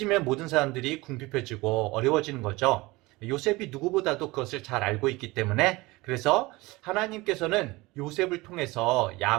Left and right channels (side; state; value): left; quieter; 21.7 dB